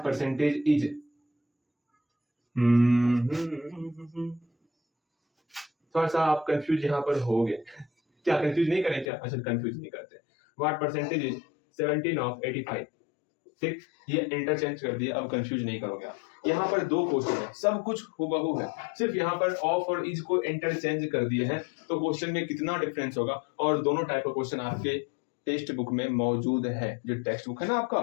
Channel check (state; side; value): drops out; right; at 9.1 s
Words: परसेंटेज इज, थोड़ा सा आप कंफ्यूज यहाँ पर हो गए। क्या कंफ्यूज नहीं करें क्या, अच्छा कंफ्यूज नहीं करते। व्हाट परसेंटेज इज 17 ऑफ 85, ठीक, ये इंटरचेंज कर दिया, अब कंफ्यूज नहीं करोगे आप। यहाँ पर 2 क्वेश्चन है, सब कुछ हूबहू है, सिर्फ यहाँ पर ऑफ और इज को इंटरचेंज कर दिए हैं, तो क्वेश्चन में कितना डिफरेंस होगा। और दोनों टाइप का क्वेश्चन आपके टेक्स्ट बुक में मौजूद है, जो टेक्स्ट बुक है ना आपका,